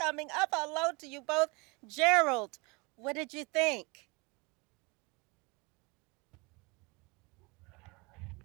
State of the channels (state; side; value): quieter; left; 28.4 dB